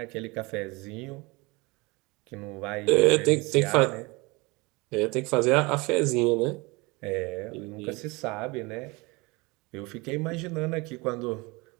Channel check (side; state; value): left; quieter; 25.2 dB